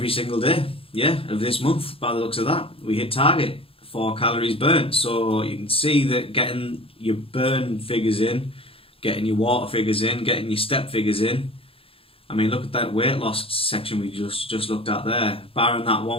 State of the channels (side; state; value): right; late; 0.27 ms